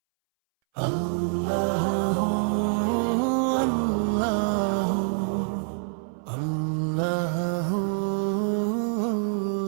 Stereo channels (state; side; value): silent; left; 61 dB below the other